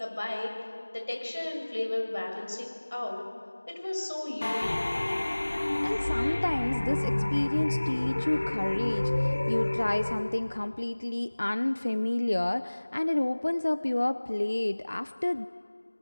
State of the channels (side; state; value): both; inverted; correlation -1.00